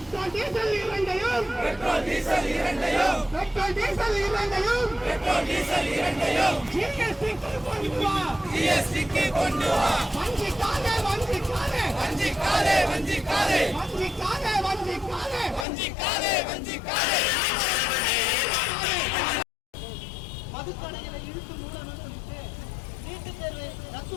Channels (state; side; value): drops out; right; at 15.7 s